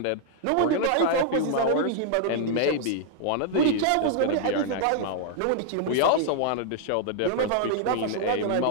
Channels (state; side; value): different; both; correlation -0.01